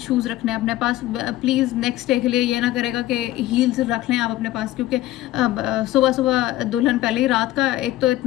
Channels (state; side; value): quieter; right; 15.2 dB